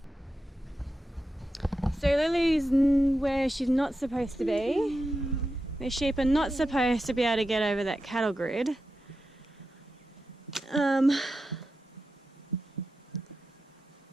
So Lily's where she's not supposed to be. The sheep are not supposed to be able to get over that cattle grid.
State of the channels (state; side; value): normal; both; correlation 0.90